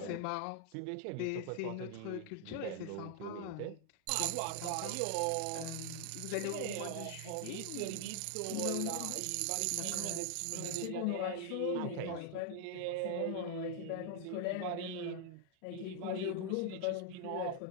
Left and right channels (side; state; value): both; different; correlation 0.00